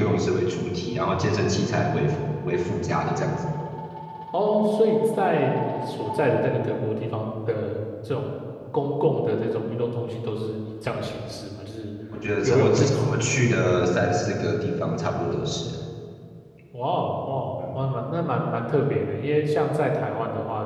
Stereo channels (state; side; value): identical; both; correlation 1.00